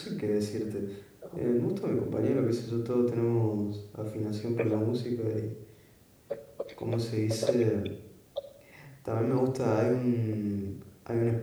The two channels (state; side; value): identical; both; correlation 1.00